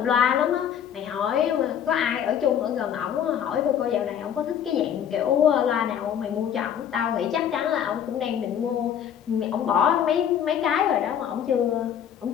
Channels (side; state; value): right; quieter; 9.1 dB